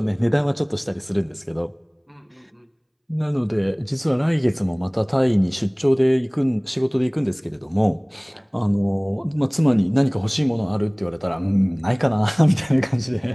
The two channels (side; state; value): both; identical; correlation 1.00